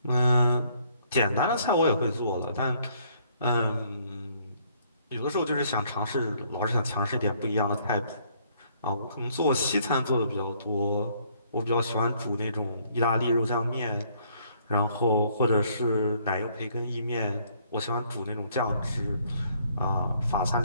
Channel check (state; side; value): inverted; both; correlation -0.65